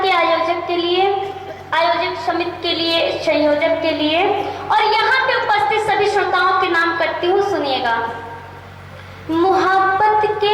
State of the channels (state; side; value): identical; both; correlation 1.00